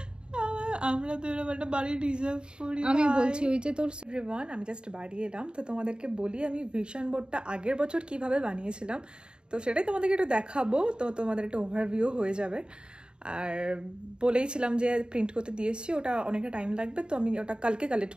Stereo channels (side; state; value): left; late; 0.050 ms